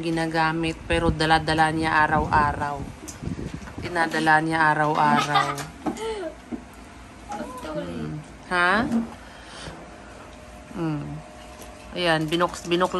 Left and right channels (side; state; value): both; identical; correlation 1.00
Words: ginagamit pero dala-dala niya araw-araw. Tinadala niya araw-araw. Ha? Ayan,